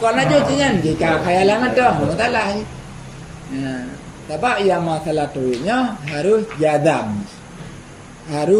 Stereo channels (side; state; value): both; identical; correlation 1.00